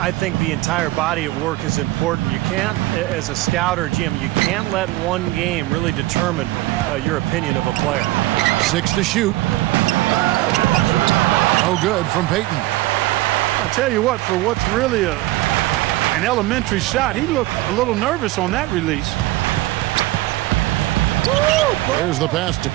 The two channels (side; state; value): left; quieter; 18.0 dB